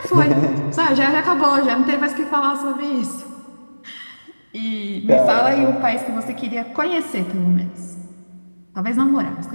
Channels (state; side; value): inverted; both; correlation -1.00